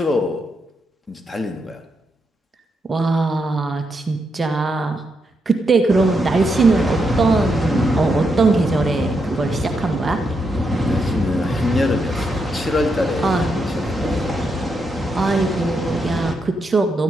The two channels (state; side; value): normal; both; correlation 0.82